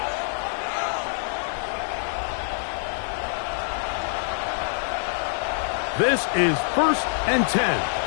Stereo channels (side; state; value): right; silent; digital silence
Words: This is first and 10.